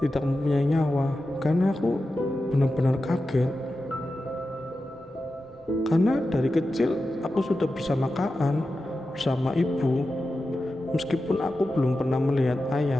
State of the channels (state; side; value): normal; both; correlation 0.92